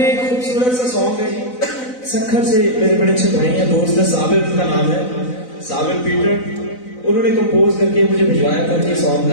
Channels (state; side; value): late; right; 4.0 ms